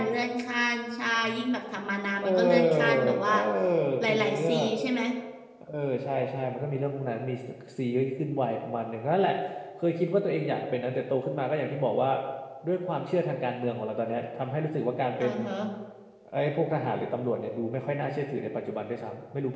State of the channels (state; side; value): identical; both; correlation 1.00